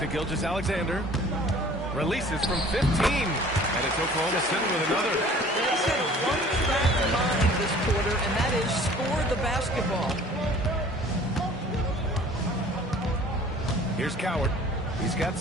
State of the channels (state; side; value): normal; both; correlation 0.49